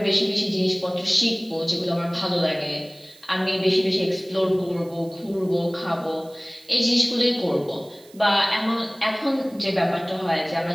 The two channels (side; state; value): right; noise; hiss, 25 dB below the sound